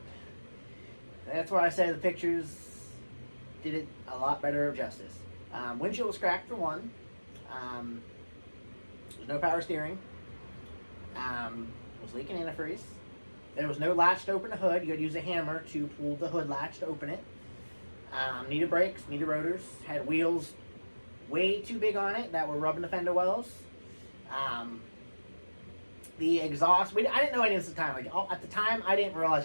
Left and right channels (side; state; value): both; inverted; correlation -1.00